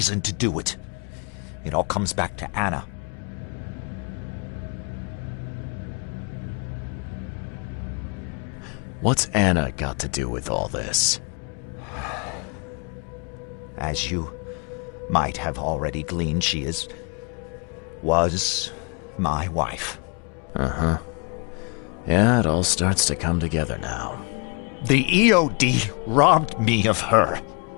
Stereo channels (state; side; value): quieter; right; 34.9 dB